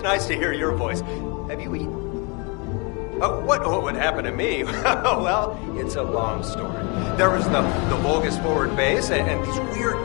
nice to hear your voice. Have you eaten? Oh, what would happen to me? Well, it's a long story. There was the Vulgus forward base and these weird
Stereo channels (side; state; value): right; quieter; 31.9 dB